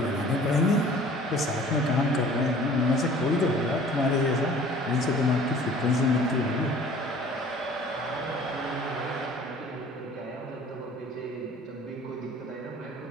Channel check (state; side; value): normal; both; correlation 0.49